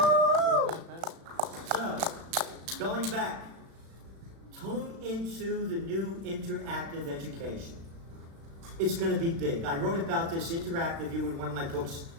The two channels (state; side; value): late; left; 36 ms